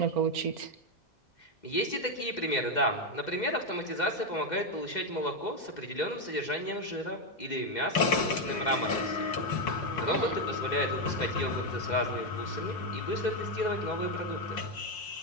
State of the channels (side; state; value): right; late; 2.0 ms